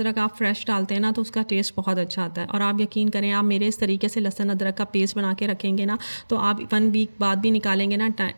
आप फ्रेश डालते हैं ना तो उसका टेस्ट बहुत अच्छा आता है। और आप यकीन करें, आप मेरे इस तरीके से लहसुन अदरक का पेस्ट बना के रखेंगे ना, तो आप 1 वीक बाद भी निकालेंगे ना,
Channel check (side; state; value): both; inverted; correlation -1.00